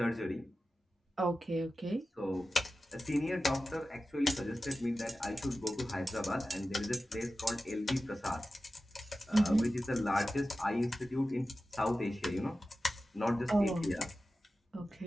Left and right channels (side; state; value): both; normal; correlation 0.94